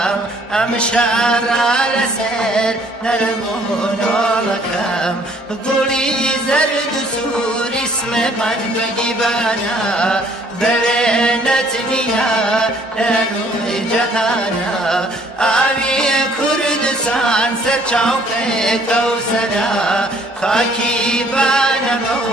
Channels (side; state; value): both; normal; correlation 0.60